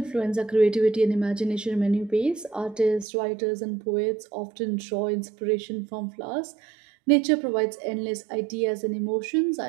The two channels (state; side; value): drops out; left; at 3.1 s